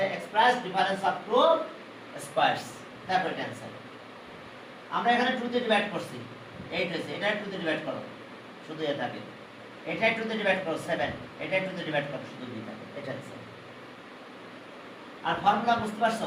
এক্সপ্রেস ডিফারেন্স অফ টু স্কয়ারস তারপর এটা आंसर। আমরা এখানে 2 দিয়ে ডিভাইড করছি 8 হয়েছে এটা 2 দিয়ে ডিভাইড করো শুধু এ থাকে এটা 2 দিয়ে ডিভাইড করো 7 এটা 2 দিয়ে ডিভাইড করো শুধু b থাকে এটা आंसर। আর ফর্মুলা বুঝতে পারছো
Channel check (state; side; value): identical; both; correlation 1.00